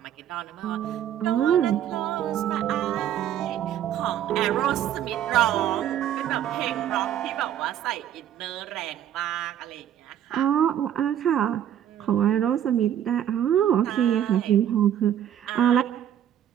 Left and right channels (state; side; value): quieter; left; 10.5 dB